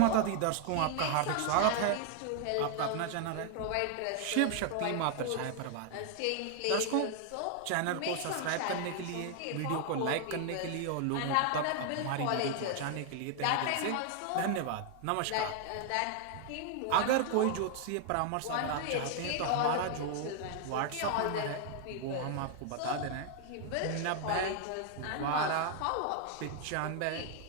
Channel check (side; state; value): both; different; correlation 0.00